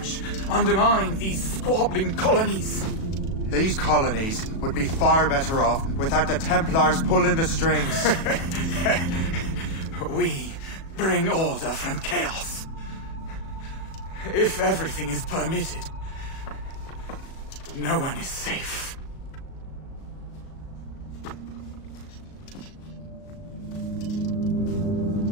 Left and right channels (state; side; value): late; right; 37 ms